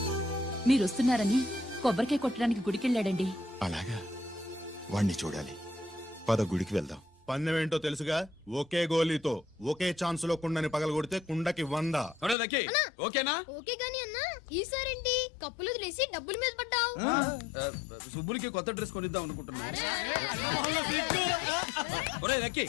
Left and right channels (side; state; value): right; drops out; at 12.4 s